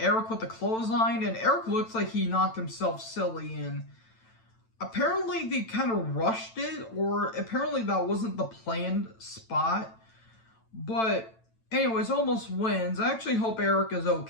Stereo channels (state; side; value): late; right; 9.0 ms